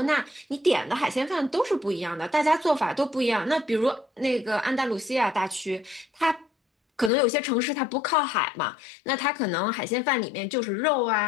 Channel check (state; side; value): drops out; right; at 7.1 s